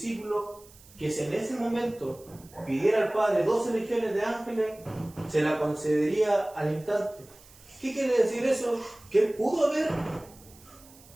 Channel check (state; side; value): noise; right; hiss, 24 dB below the sound